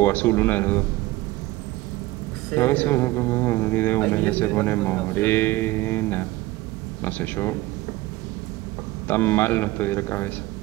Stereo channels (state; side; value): quieter; left; 18.6 dB